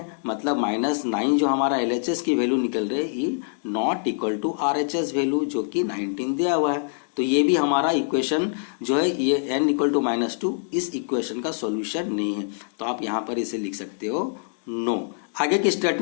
मतलब -9 जो हमारा LHS की वैल्यू निकल रही है ये not equal to RHS value जो कि 19 दिया हुआ है। तो ये भी हमारा इक्वेशन जो है ये n इक्वल टू -2 इस इक्वेशन का सॉल्यूशन नहीं है। तो आप यहाँ पर इसे लिख सकते हो नो। आगे की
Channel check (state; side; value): silent; right; 62 dB below the other